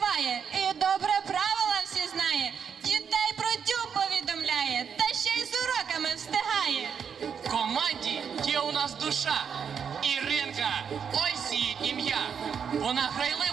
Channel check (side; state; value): left; quieter; 7.1 dB